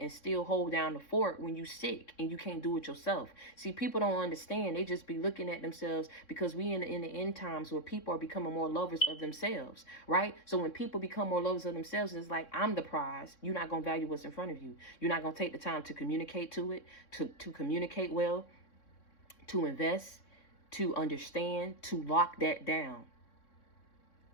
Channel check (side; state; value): right; late; 3.6 ms